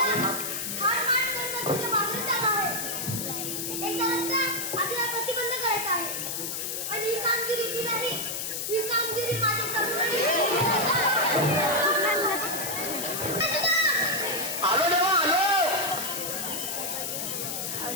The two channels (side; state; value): left; noise; hiss, 3 dB below the sound